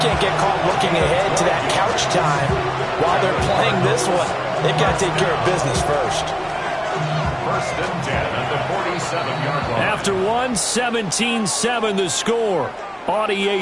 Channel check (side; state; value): both; identical; correlation 1.00